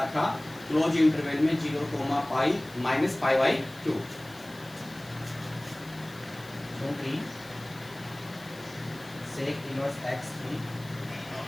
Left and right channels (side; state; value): left; noise; hiss, 21 dB below the sound